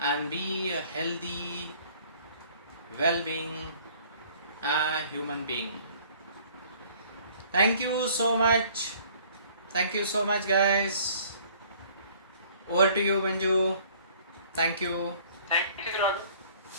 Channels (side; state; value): both; inverted; correlation -0.55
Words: be a healthy, well-being human being. Thank you so much. Thank you so much, guys. Over to you, Manju. Thank you. Thank you, Raghav.